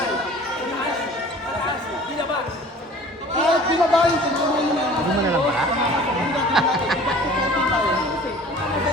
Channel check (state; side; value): normal; both; correlation 0.46